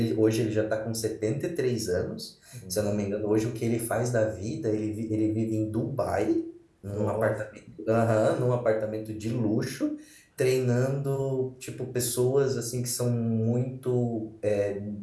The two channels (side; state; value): both; identical; correlation 1.00